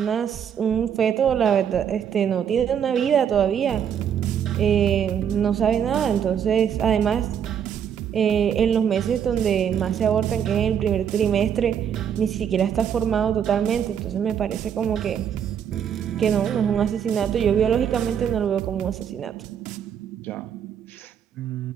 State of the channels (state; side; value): quieter; left; 8.4 dB